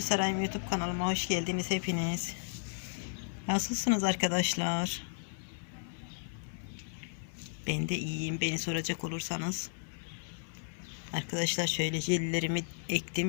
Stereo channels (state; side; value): silent; right; digital silence